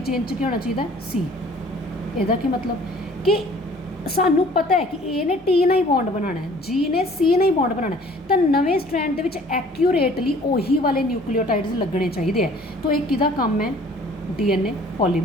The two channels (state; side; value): normal; both; correlation 0.53